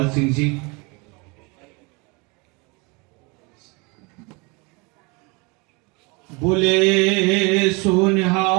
सिंह जी। बोले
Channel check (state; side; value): quieter; left; 28.6 dB